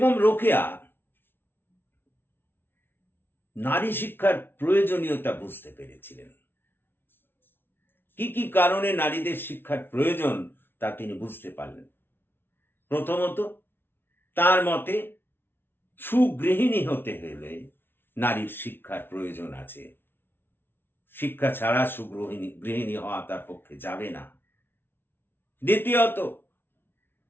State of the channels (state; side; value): late; right; 0.11 ms